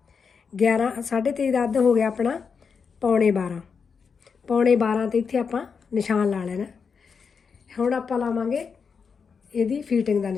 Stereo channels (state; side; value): quieter; right; 5.9 dB